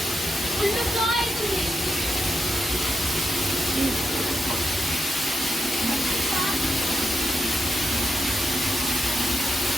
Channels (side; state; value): both; normal; correlation 0.85